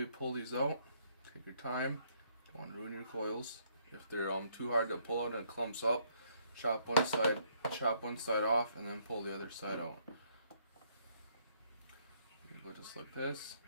pull these out. Take your time. Don't want to ruin your coils. If they're too hard to pull out and it clumps up, chop one side off, and then pull the other side out. You go just like this.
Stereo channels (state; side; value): inverted; both; correlation -0.69